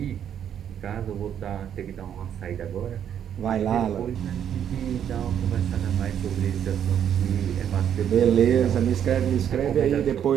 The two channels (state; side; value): quieter; left; 9.2 dB